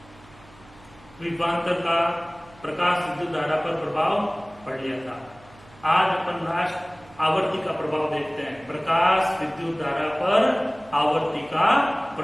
विभवांतर का प्रकाश विद्युत धारा पर प्रभाव पढ़ लिया था। आज अपन लास्ट आवर्ती का प्रभाव देखते हैं। प्रकाश विद्युत धारा पर आवर्ती का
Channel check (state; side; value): noise; right; hum, 25 dB below the sound